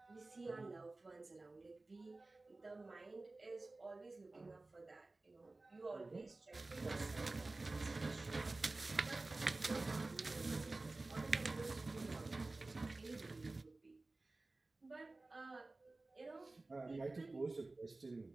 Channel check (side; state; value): left; quieter; 3.2 dB